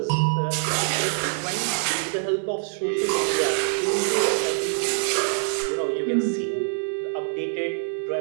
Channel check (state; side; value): silent; left; digital silence